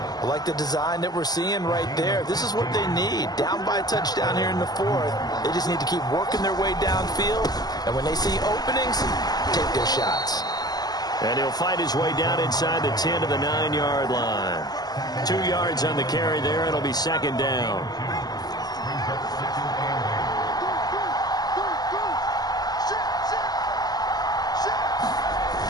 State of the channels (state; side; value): late; right; 0.19 ms